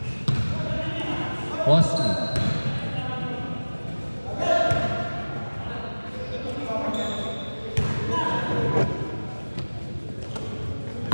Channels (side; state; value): both; inverted; correlation -1.00